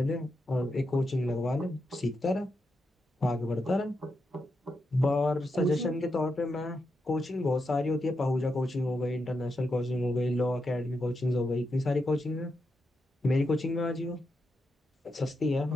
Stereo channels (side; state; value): both; normal; correlation 0.85